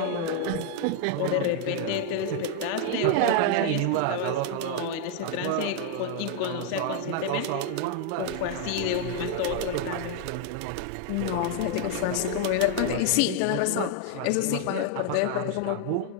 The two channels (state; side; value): different; both; correlation 0.00